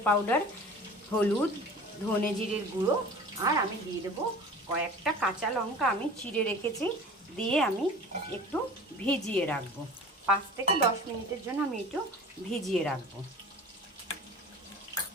পাউডার, হলুদ, ধনে জিরের গুঁড়ো, আর আমি দিয়ে দেবো কয়েকটা কাঁচা লঙ্কা আমি চিড়ে রেখেছি। দিয়ে আমি একটু ভিজিয়ে রাখবো, 5 থেকে 10 মিনিটের জন্য আমি একটু ভিজিয়ে রাখবো।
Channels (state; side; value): normal; both; correlation 0.40